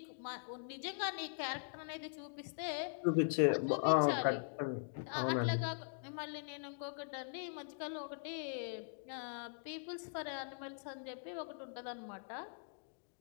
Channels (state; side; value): silent; right; digital silence